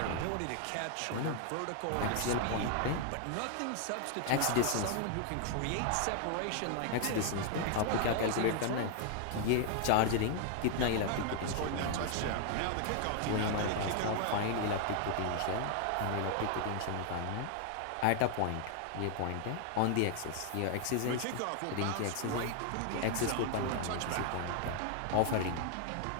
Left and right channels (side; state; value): both; different; correlation 0.00